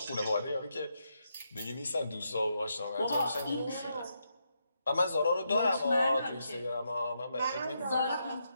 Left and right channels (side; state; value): both; inverted; correlation -0.81